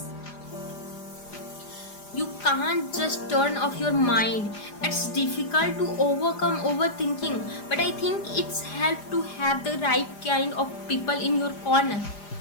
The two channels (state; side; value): late; right; 4.9 ms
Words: You can't just turn off your mind. It's difficult to overcome overthinking, but I think it's helped to have the right kind of people in your corner.